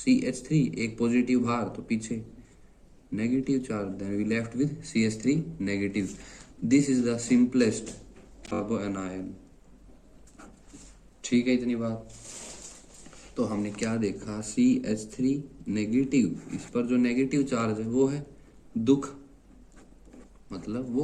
एक पॉजिटिव बाहर तो पीछे negative charge, then we left with CH3 negative. This is the simplest carbanion. ठीक है, इतनी बात. तो हमने क्या देखा, CH3 नेगेटिव, इस पर जो नेगेटिव चार्ज है वो है दुख, मतलब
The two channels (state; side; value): identical; both; correlation 1.00